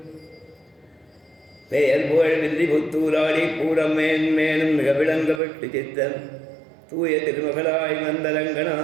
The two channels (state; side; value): drops out; left; at 5.4 s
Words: பெயர் புகழ் வில்லி புத்தூராடி பூரம் மேன்மேனும் மிக விளங்கப்பட்டு சித்தன் தூய திருமகளாய்